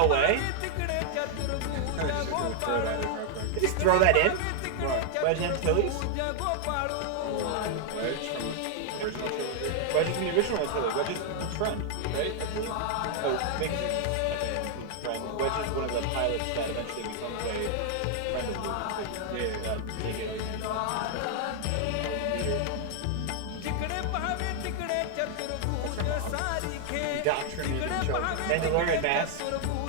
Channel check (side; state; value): both; different; correlation 0.00